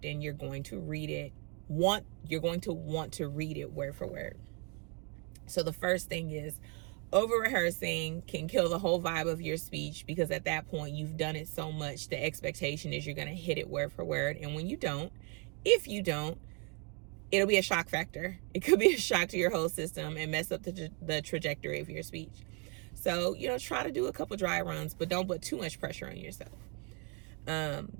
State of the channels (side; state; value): left; quieter; 34.6 dB